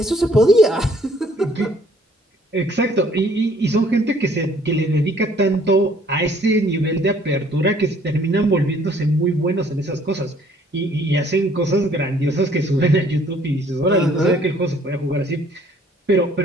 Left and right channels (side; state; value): both; normal; correlation 0.60